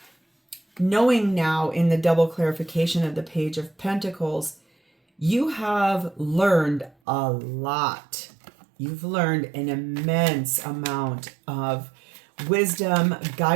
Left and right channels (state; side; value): drops out; left; at 7.0 s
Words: Knowing now in the double clarification of the Page of Pentacles, you have learned a lot. You've learned an immense amount of wisdom,